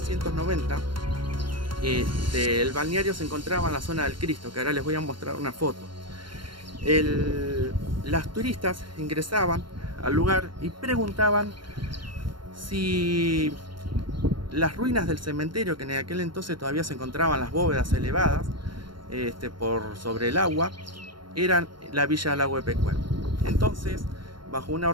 el balneario se encontraba en la zona del Cristo, que ahora les voy a mostrar una foto. Las turistas ingresaban al lugar y preguntaban si las ruinas del cementerio, que en aquel entonces todavía se encontraban las bóvedas elevadas por sobre el agua, eran la villa del Lago de Pecuén. Entonces, bajo una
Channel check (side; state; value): left; late; 0.73 ms